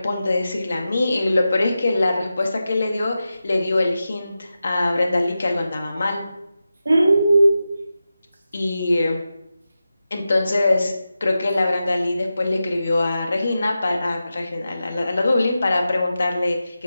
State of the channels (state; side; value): inverted; both; correlation -0.92